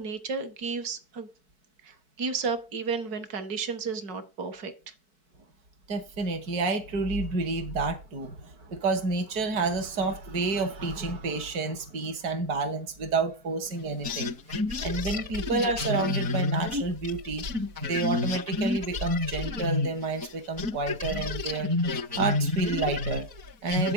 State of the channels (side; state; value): left; late; 4.6 ms